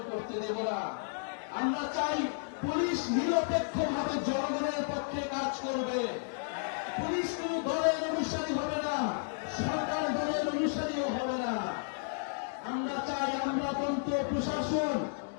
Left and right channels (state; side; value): silent; right; digital silence